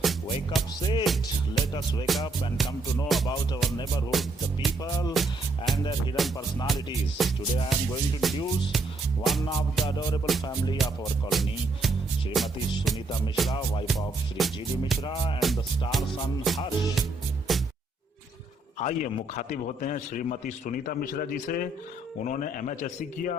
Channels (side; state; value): left; quieter; 3.1 dB